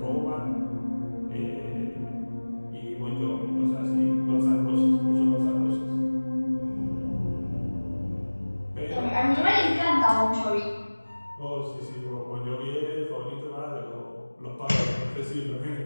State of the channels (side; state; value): both; inverted; correlation -1.00